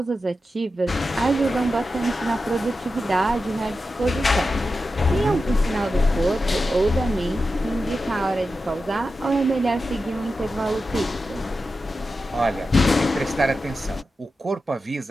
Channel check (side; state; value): both; normal; correlation 0.91